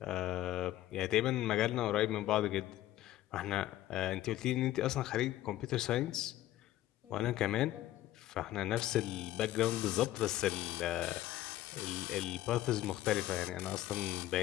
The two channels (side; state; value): right; quieter; 14.7 dB